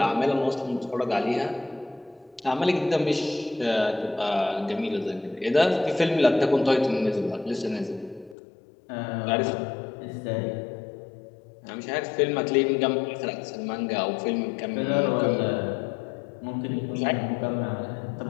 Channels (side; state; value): right; drops out; at 8.3 s